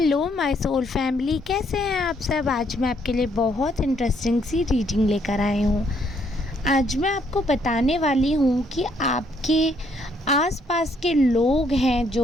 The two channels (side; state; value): both; normal; correlation 0.69